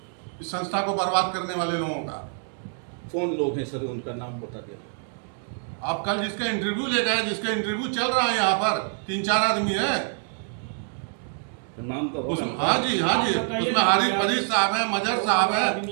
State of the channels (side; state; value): left; silent; 57 dB below the other